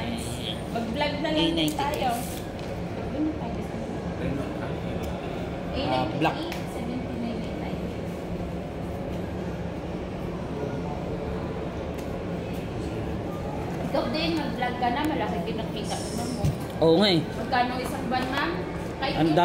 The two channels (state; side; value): identical; both; correlation 1.00